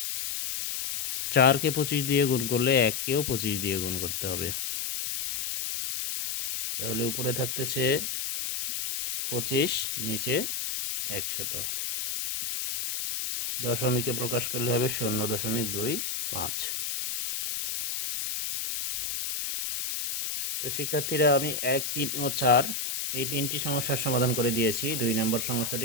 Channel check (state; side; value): noise; left; hiss, 3 dB below the sound